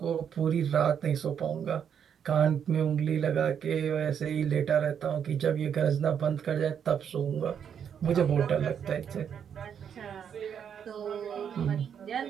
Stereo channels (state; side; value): quieter; left; 8.0 dB